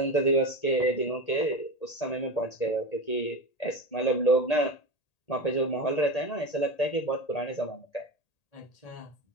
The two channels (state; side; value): late; right; 1.8 ms